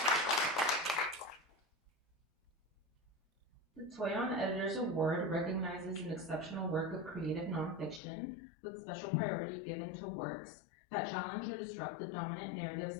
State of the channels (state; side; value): drops out; right; at 8.0 s